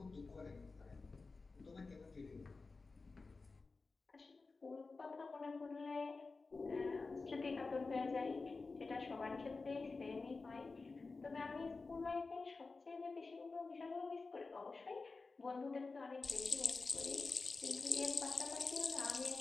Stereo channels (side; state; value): right; quieter; 4.0 dB